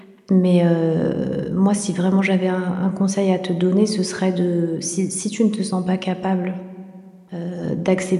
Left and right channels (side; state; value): both; identical; correlation 1.00